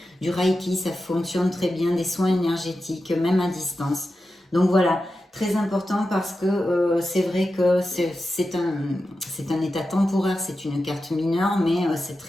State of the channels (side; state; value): both; normal; correlation 0.91